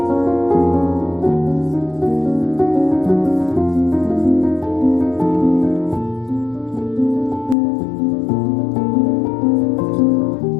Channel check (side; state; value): right; drops out; at 7.6 s